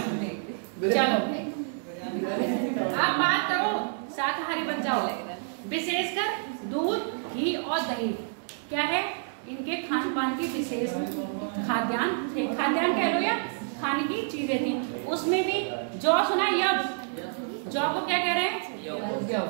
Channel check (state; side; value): silent; left; 59 dB below the other